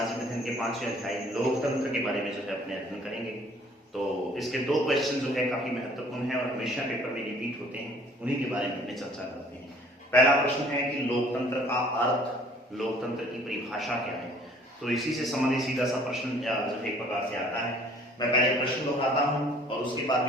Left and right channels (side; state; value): both; normal; correlation 0.55